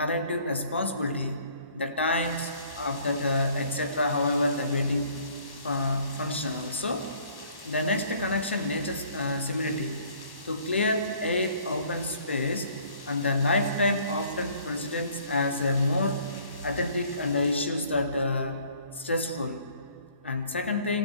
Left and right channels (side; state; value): both; inverted; correlation -0.58